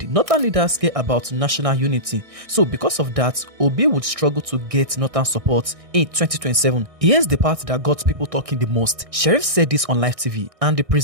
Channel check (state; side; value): late; left; 1.6 ms